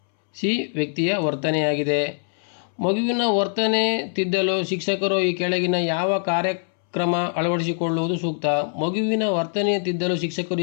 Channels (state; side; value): silent; right; 63 dB below the other